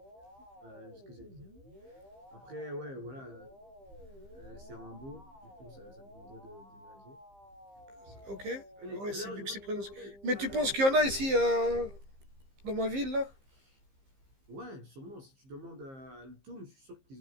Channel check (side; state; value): left; late; 15 ms